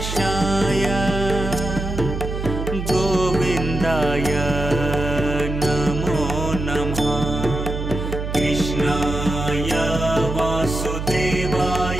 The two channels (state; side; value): noise; right; hum, 5 dB below the sound